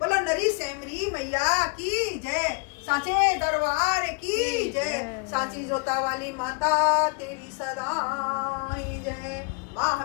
नरी सेमरी मैया की जय। साचे दरबार की जय। साची जोता वाली माता तेरी सदा ही जय। माँ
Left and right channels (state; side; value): quieter; right; 33.9 dB